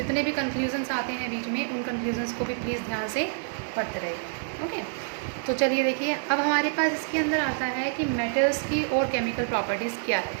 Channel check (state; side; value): silent; left; 60 dB below the other